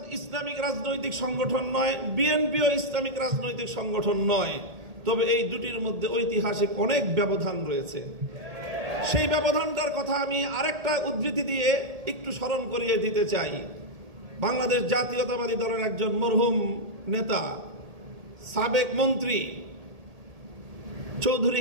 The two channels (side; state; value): left; late; 1.8 ms